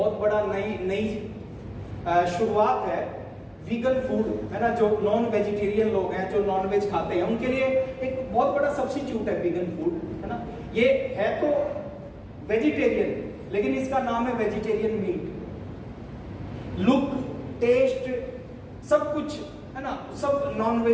बड़ा नई शुरुआत है। वीगन फूड, है ना, जो नॉन वेजिटेरियन लोग हैं, जो नॉन वेज खाते हैं, उनके लिए एक बहुत बड़ा सब्स्टिट्यूट है वीगन फूड, है ना। ये है तो वेजिटेरियन लेकिन इसका नाम है वेजिटेरियन मीट। लुक, टेस्ट, सब कुछ, है ना, सब नॉन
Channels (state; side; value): identical; both; correlation 1.00